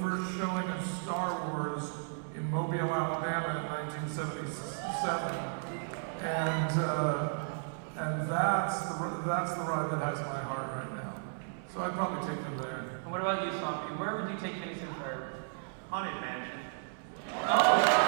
first showing of Star Wars in Mobile, Alabama in 1977. And that's the ride that has my heart right now. So I'd probably take them there. And what about you, Swampy? Where would you take Phineas and Ferb? Haunted Mansion. Oh,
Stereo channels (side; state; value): left; silent; 55 dB below the other